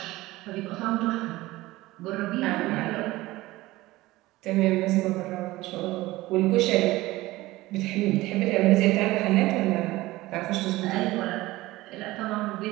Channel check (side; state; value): left; quieter; 18.5 dB